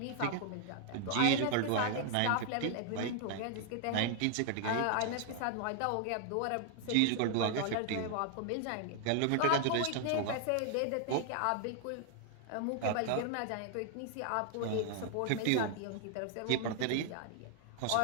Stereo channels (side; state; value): both; different; correlation 0.00